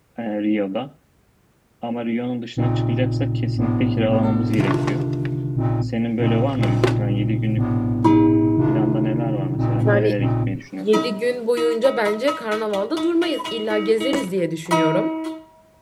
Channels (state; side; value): identical; both; correlation 1.00